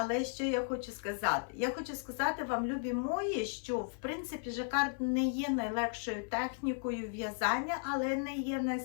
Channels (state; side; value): silent; right; 54 dB below the other